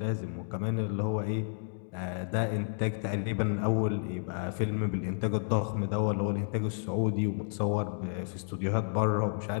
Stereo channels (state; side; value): silent; right; digital silence